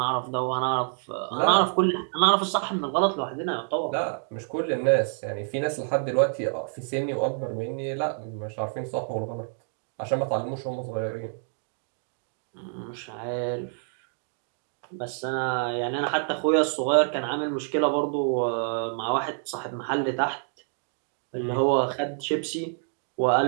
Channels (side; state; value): left; silent; 60 dB below the other